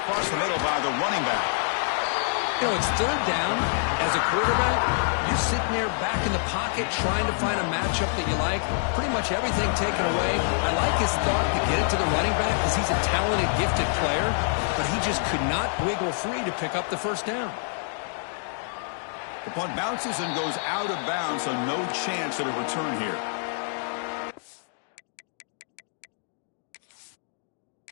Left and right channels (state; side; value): silent; right; digital silence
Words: the middle by the running back. You know, it's 3rd down. As a quarterback, you're sitting there back in the pocket trying to find a matchup that you like. Pretty much everything taken away. I like his thought to get it to the running back because he's a talented, gifted player, but he just could not wiggle free to pick up the 1st down. The punt bounces and goes out of bounds, so no chance at a return here.